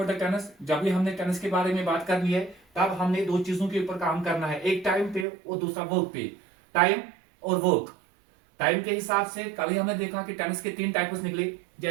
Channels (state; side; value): drops out; left; at 5.2 s